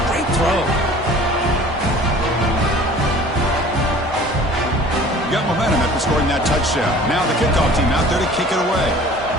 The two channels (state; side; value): normal; both; correlation 0.46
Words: Great throw. Got momentum after scoring that touchdown. Now the kickoff team out there to kick it away.